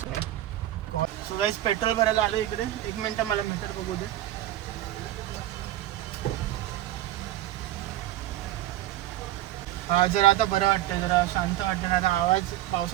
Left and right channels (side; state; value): left; quieter; 14.1 dB